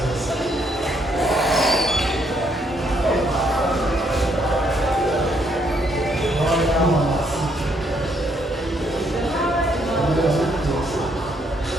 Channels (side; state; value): both; normal; correlation 0.71